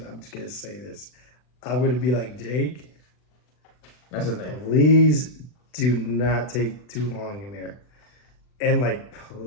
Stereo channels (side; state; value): right; late; 40 ms